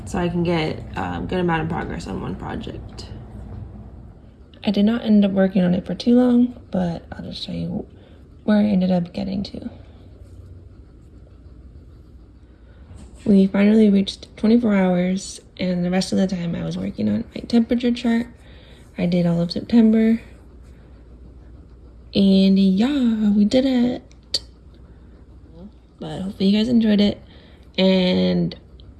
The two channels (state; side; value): identical; both; correlation 1.00